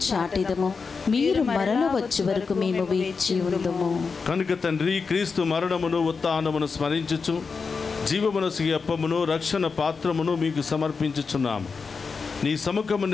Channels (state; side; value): quieter; right; 5.0 dB